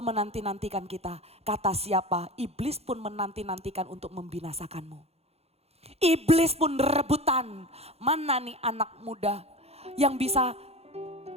kita, kata siapa? Iblis pun menanti-nantikan untuk membinasakanmu. Iblis pun rebutan, mana nih anak muda yang bisa,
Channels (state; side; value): late; left; 0.30 ms